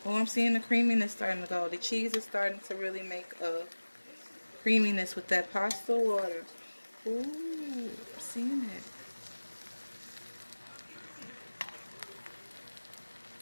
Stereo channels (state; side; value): inverted; both; correlation -1.00